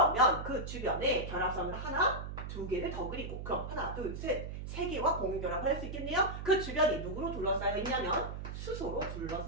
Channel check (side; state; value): right; noise; hum, 7 dB below the sound